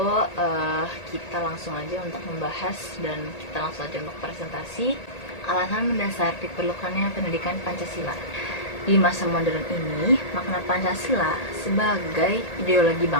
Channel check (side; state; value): right; late; 1.9 ms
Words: kita langsung aja untuk membahas dan kita langsung aja untuk presentasi alasan mendasar diperlukannya pendidikan Pancasila. Di masa modern ini, makna Pancasila sebagai ideologi